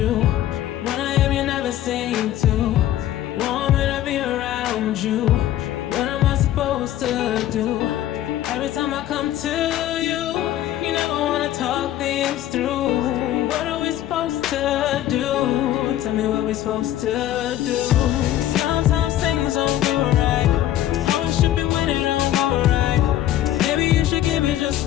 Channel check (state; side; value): quieter; right; 12.9 dB